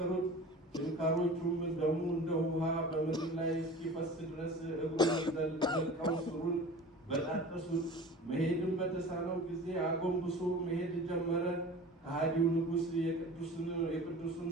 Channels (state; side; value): normal; both; correlation 0.39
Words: ችንካሮቹም ደሙ እንደ ውሃ በምድር ላይ እስኪፈስ ድረስ እግሩን ዘልቀው ስሩን በጣጠሱት። መሄድም በተሳነው ጊዜ አጎንብሶ መሄድ ጀመረ። ከሃዲው ንጉሥ የቅዱሱን